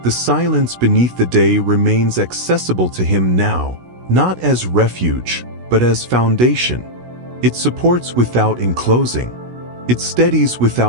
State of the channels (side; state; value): left; late; 16 ms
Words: The silence beneath the day remains accessible to him now, not as refuge, but as foundation. It supports without enclosing. It steadies